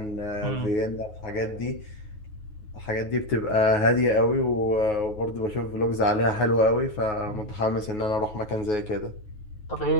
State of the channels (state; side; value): late; right; 9.5 ms